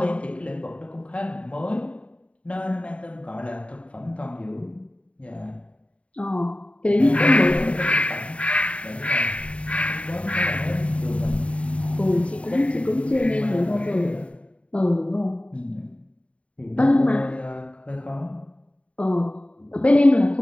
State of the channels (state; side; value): late; right; 0.063 ms